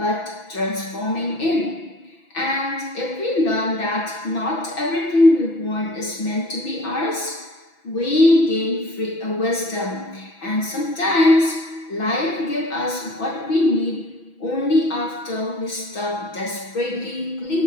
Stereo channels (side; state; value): right; late; 6.0 ms